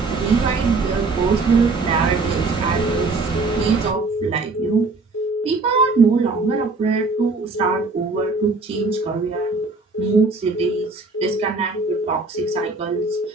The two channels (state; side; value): quieter; left; 3.7 dB